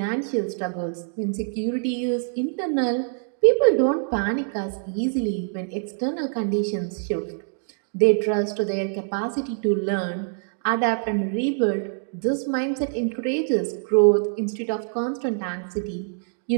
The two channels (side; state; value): left; silent; digital silence